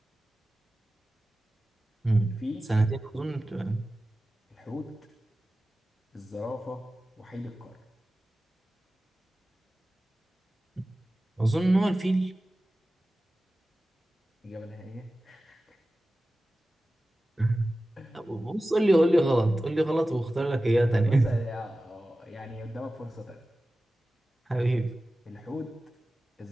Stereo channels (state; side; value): normal; both; correlation 0.95